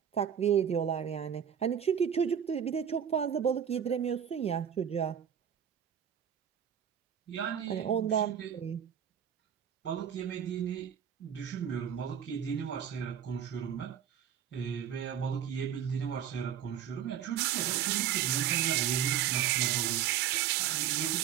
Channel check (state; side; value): quieter; left; 9.1 dB